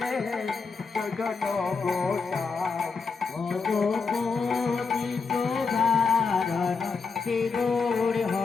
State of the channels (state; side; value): quieter; right; 4.9 dB